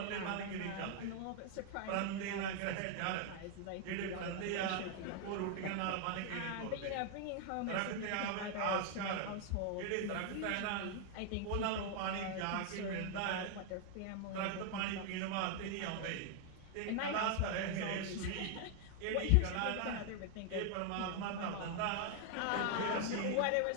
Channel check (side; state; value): both; different; correlation 0.00